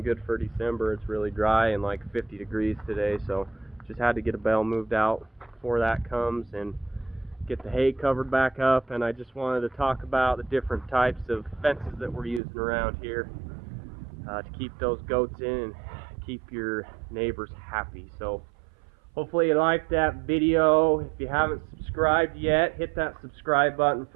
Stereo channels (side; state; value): left; drops out; at 12.4 s